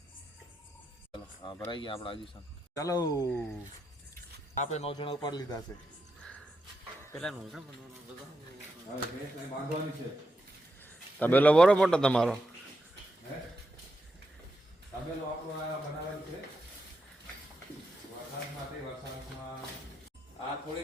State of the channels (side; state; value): both; normal; correlation 0.85